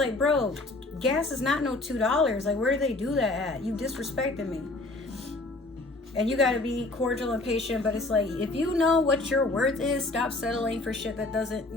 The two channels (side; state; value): right; quieter; 3.0 dB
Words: bro, gas is not no $2. Like, where do they do that at? You disrespected me. And you gotta be cordial and patient, but it's like, if you know what your worth is, stop settling for shit that doesn't,